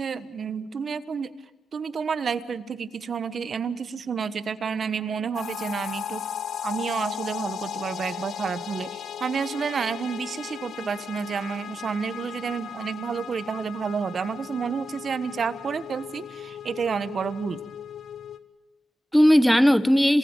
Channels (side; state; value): both; normal; correlation 0.89